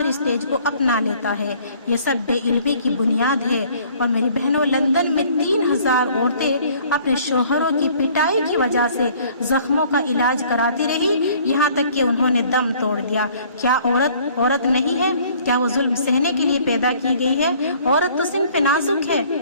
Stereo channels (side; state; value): both; inverted; correlation -0.56